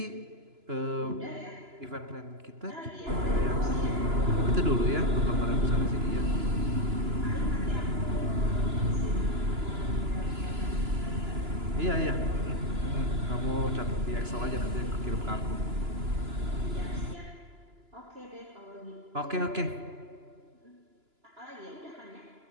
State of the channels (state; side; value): late; left; 2.9 ms